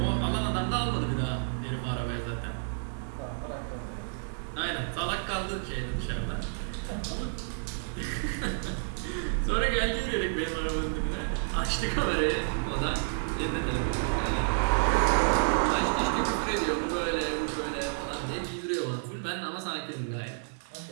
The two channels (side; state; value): left; silent; 58 dB below the other